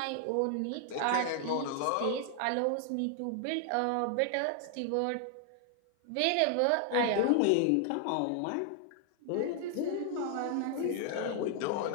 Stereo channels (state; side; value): different; both; correlation 0.00